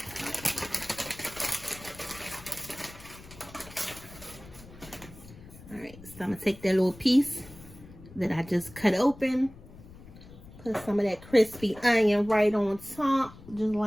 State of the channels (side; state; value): left; noise; rumble, 19 dB below the sound